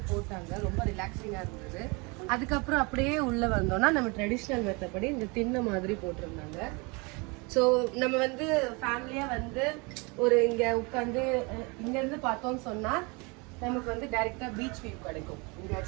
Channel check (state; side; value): quieter; left; 28.9 dB